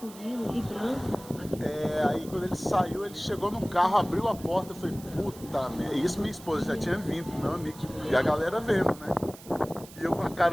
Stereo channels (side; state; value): right; noise; hiss, 19 dB below the sound